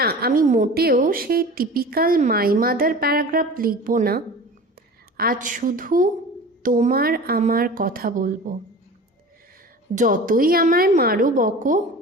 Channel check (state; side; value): normal; both; correlation 0.37